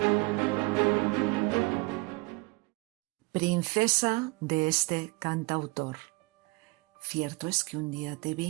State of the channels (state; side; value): quieter; left; 26.7 dB